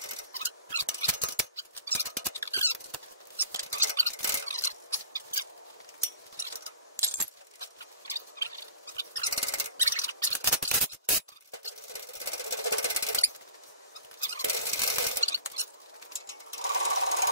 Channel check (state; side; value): inverted; both; correlation -0.42